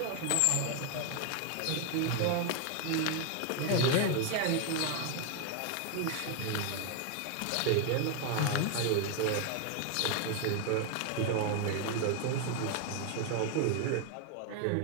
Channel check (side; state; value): both; different; correlation 0.01